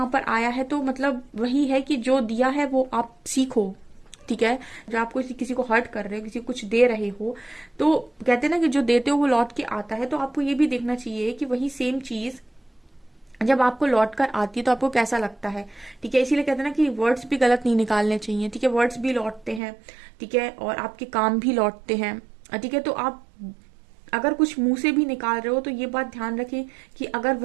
पर आया है, तो मतलब वही है कि जो दिया है वो आप सीखो, ठीक है। जब आप किसी को हर्ट कर रहे हो, किसी को कुछ दे रहे हो, तो कहते हैं ना कि जो देते हो वो लौट के आता है, तो आपको ये भी देखना चाहिए कि वही सेम चीज जब आपको लौट कर आती है तो आपको कैसा लगता है, ठीक है। इसीलिए कहते हैं ना कि वर्ड्स भी गलत नहीं निकालने चाहिए, ठीक है। वर्ड्स भी लौटते हैं, ठीक है, और आपके काम भी लौटते हैं, ठीक है। तो आप अगर कुछ मुंह से भी निकाल रहे हो तो ये बात ध्यान रखें कि अगर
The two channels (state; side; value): drops out; left; at 19.6 s